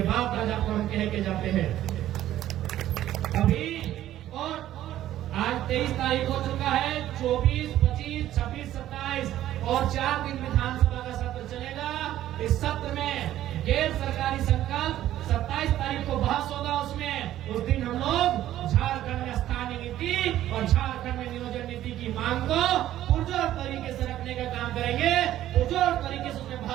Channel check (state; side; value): quieter; left; 13.0 dB